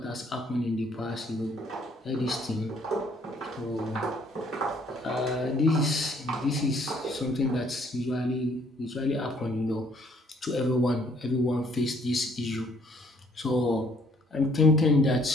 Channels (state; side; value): normal; both; correlation 0.63